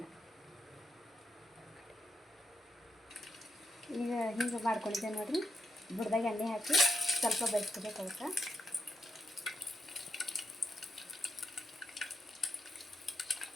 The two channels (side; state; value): both; normal; correlation 0.83